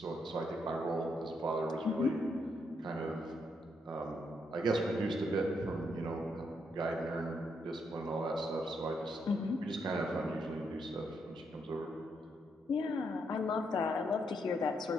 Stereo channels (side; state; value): both; normal; correlation 0.77